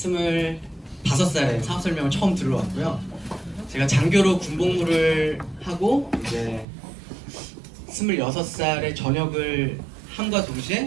사업 설명을 처음 들어왔고요. 제가 장교로 군복무를 하고 이제 26살에 전역을 함과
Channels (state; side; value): drops out; left; at 6.7 s